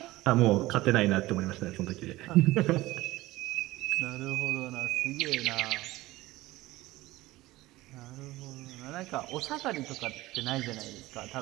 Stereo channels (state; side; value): quieter; left; 18.2 dB